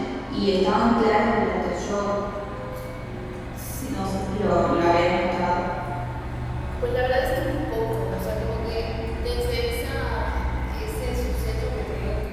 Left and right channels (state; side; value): identical; both; correlation 1.00